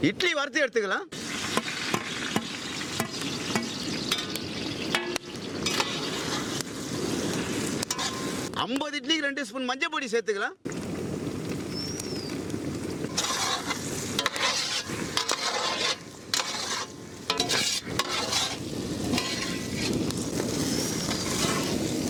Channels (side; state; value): both; identical; correlation 1.00